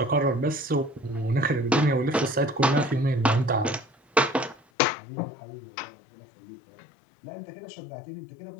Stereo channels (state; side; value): drops out; right; at 4.6 s